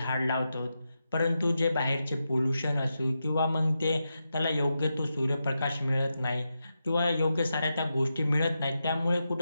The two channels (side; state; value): both; inverted; correlation -0.88